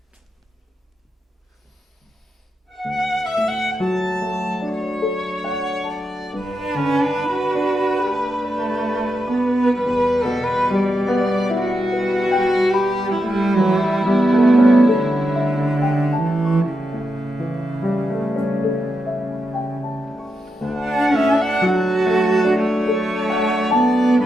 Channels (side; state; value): both; normal; correlation 0.86